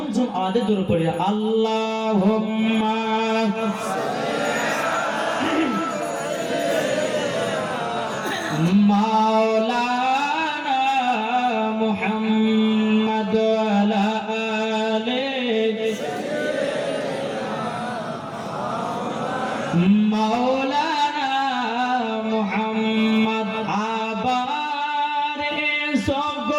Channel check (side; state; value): both; identical; correlation 1.00